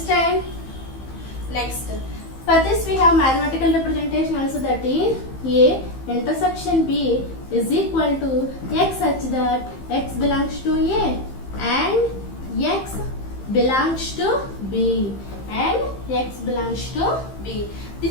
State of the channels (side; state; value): right; late; 15 ms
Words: Next, for this we have mathematical representation also, that is A intersection B is equal to x such that x belongs to A and x belongs to B and x belongs to B.